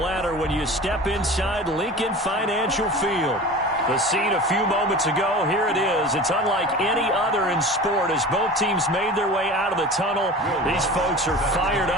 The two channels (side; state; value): both; normal; correlation 0.36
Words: when you step inside Lincoln Financial Field. The scene a few moments ago, here it is. It's unlike any other in sport as both teams made their way out of the tunnel. These folks are fired